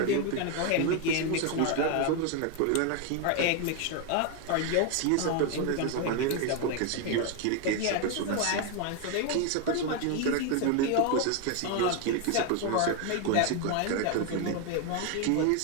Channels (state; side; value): different; both; correlation 0.01